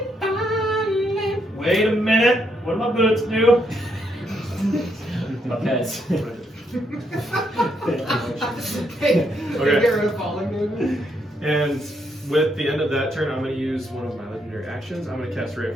Wait a minute. What do my boots do? Because Hey, Okay. get rid of falling damage. And with the end of that turn, I'm going to use one of my legendary actions. I'm going to cast Ray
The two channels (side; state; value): both; normal; correlation 0.76